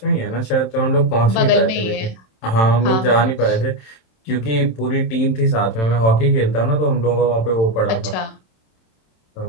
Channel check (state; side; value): late; right; 27 ms